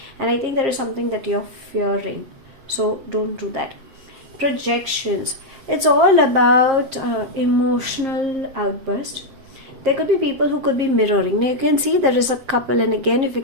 and I think there is something that you're fearing, so don't do that. Projections. It's all about emotional outburst. There could be people who could be mirroring. Now you can see there is a couple, and again if you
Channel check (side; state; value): left; late; 7.5 ms